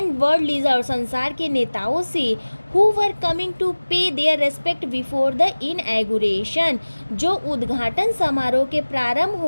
वर्ल्ड लीडर, संसार के नेताओं से, हु वर कमिंग टू पे देयर रेस्पेक्ट बिफोर द इनएगुरेशन, जो उद्घाटन समारोह के प्रारंभ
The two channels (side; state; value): both; inverted; correlation -1.00